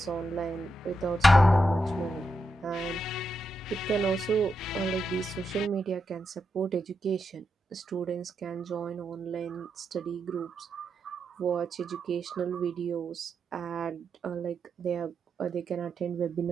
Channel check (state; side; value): normal; both; correlation 0.85